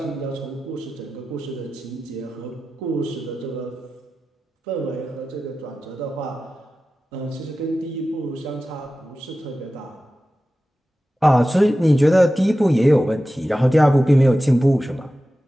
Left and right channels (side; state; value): both; normal; correlation 0.94